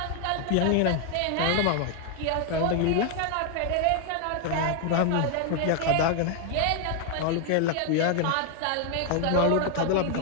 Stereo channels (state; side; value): different; both; correlation 0.00